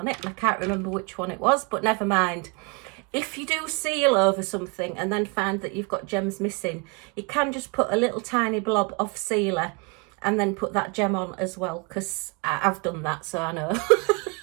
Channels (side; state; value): left; quieter; 31.0 dB